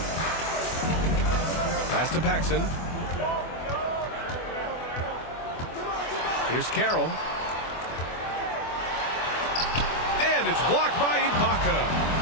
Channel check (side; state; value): right; late; 24 ms